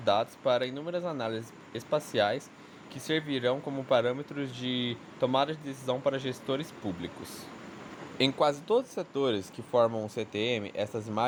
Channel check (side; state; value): both; identical; correlation 1.00